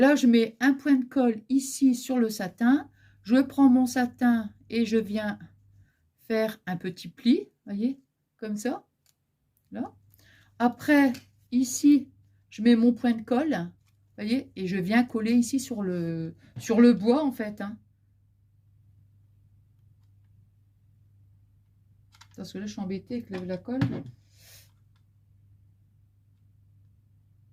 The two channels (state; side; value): identical; both; correlation 1.00